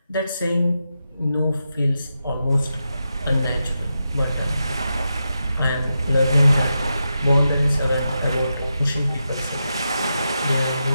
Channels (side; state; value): both; inverted; correlation -0.88